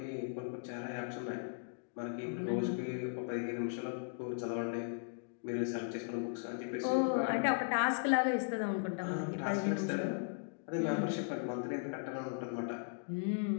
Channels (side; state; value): right; silent; digital silence